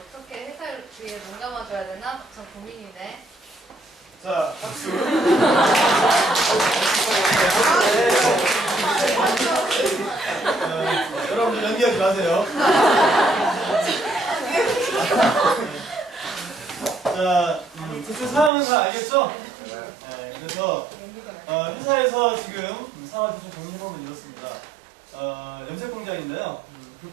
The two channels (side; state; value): left; drops out; at 18.5 s